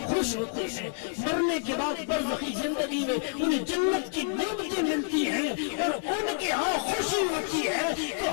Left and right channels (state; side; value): silent; right; digital silence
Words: خوش ہوتے ہیں، مرنے کے بعد برزخی زندگی میں انہیں جنت کی نعمتیں ملتی ہیں اور ان کے ہاں خوشی ہوتی ہے، تو